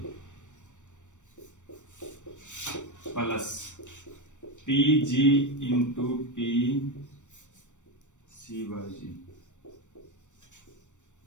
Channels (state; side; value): late; right; 0.85 ms